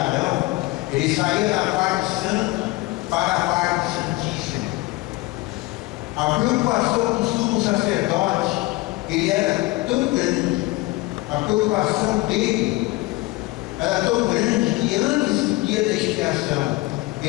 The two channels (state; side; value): quieter; right; 21.0 dB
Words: Arão, ele saía da parte santa para a parte santíssima. A preocupação do sumo sacerdote, ele era tão grande, a preocupação dele era tão grande que antes do dia da expiação,